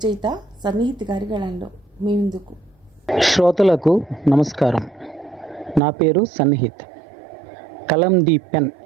సన్నిహిత్ గారి గళంలో మీ ముందుకు. శ్రోతలకు నమస్కారం. నా పేరు సన్నిహిత్. కలం ది పెన్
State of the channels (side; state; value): left; drops out; at 5.8 s